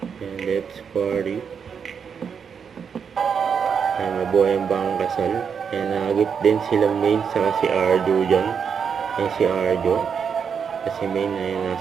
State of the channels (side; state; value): left; quieter; 6.8 dB